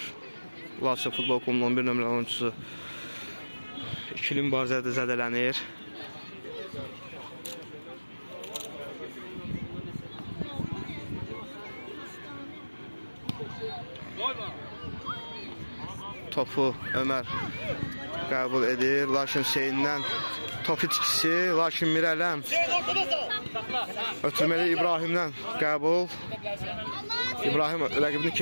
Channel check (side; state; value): both; inverted; correlation -1.00